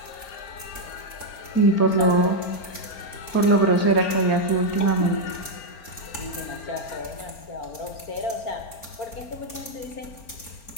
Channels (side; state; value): right; late; 4.4 ms